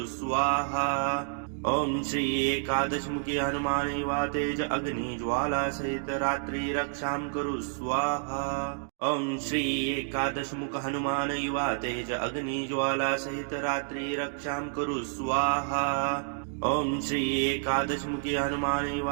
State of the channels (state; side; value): silent; left; digital silence